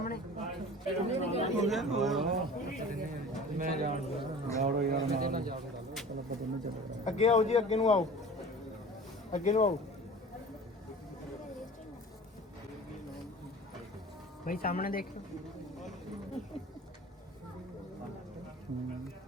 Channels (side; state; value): both; normal; correlation 0.41